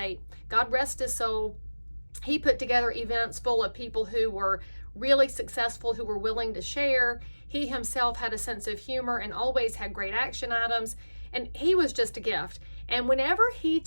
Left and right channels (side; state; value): both; inverted; correlation -1.00